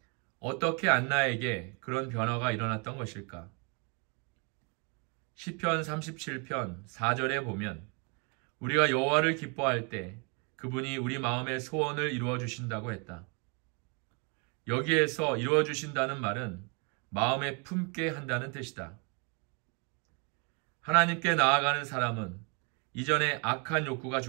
어떻게 안나에게 그런 변화가 일어났던 것일까? 시편 37편 4절에 보면 우리가 여호와를 기뻐할 때 그분이 우리 마음의 소원을 이루어 주신다고 했다. 여기에서 이루어 주신다는 말은 마음에 품게 한다는 뜻이다. 하나님께 나아가는 사람은 이전에 악한 욕구가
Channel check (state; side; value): quieter; left; 33.5 dB